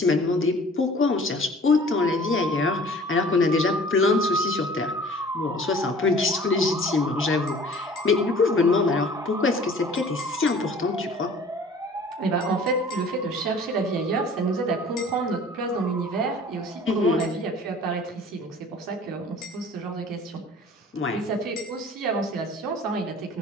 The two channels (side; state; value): both; normal; correlation 0.48